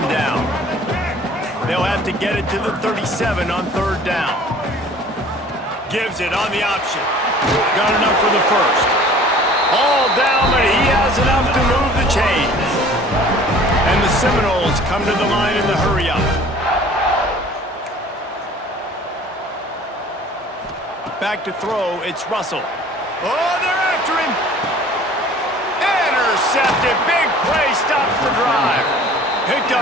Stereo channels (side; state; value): both; normal; correlation 0.49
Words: down. They'll have to get it to the 37 on 3rd down. Gives it on the option. Got enough for the first. All down, but he has enough to move the chains. And the Seminoles come to the line in the hurry-up. Back to throw, it's Russell. Oh, they're after him. Intercepted. Big play, stops the drive. Picked